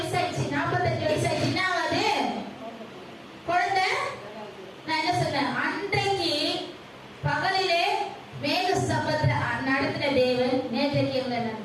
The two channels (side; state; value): both; identical; correlation 1.00